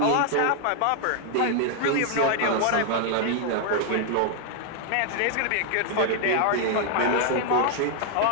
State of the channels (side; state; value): both; different; correlation 0.00